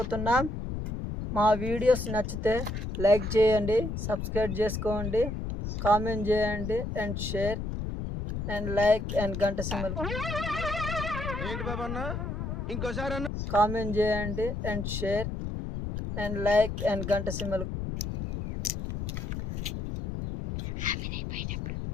మా వీడియోస్ నచ్చితే లైక్ చేయండి, సబ్స్క్రైబ్ చేసుకోండి, కామెంట్ చేయండి and share and like and గంట సింబల్ కామెంట్ చేయండి and share and like and గంట సింబల్.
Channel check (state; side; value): noise; left; rumble, 4 dB below the sound